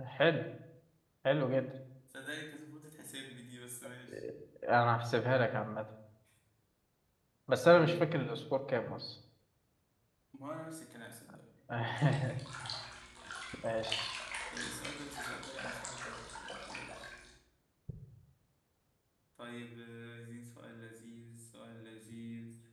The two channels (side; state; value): both; identical; correlation 1.00